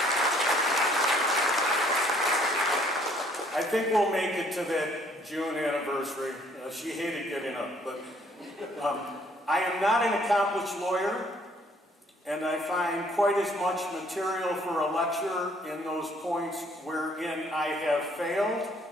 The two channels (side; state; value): both; normal; correlation 0.62